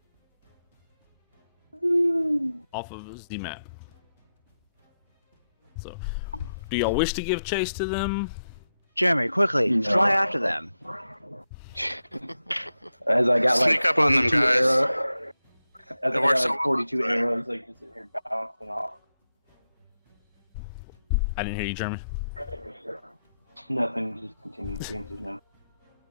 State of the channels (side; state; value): both; inverted; correlation -0.88